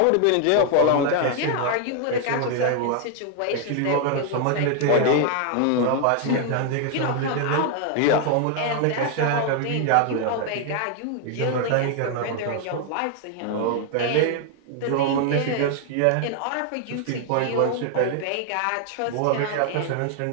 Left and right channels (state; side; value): different; both; correlation 0.00